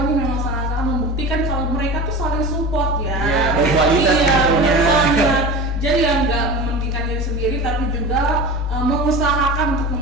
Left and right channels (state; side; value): noise; left; hum, 21 dB below the sound